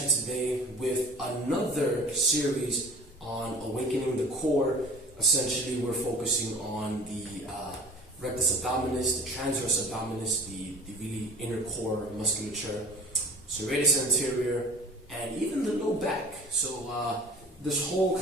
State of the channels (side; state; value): both; normal; correlation 0.44